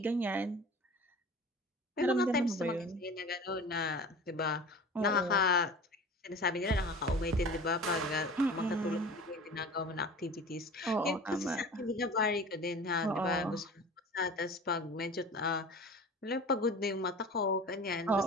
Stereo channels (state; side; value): normal; both; correlation 0.38